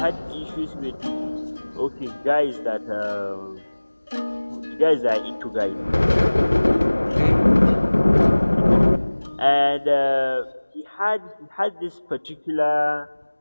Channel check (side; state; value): both; inverted; correlation -1.00